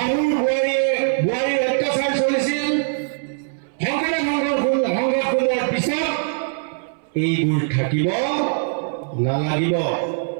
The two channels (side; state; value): left; silent; 62 dB below the other